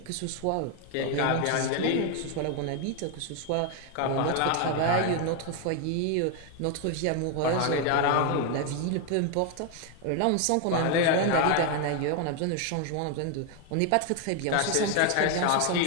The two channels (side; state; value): both; different; correlation 0.01